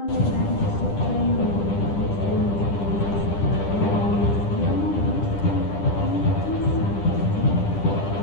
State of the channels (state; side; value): late; right; 10 ms